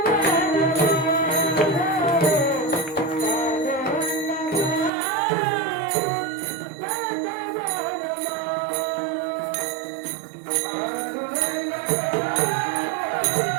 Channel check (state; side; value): drops out; left; at 4.9 s